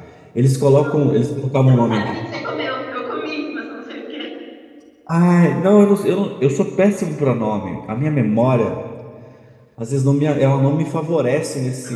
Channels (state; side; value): identical; both; correlation 1.00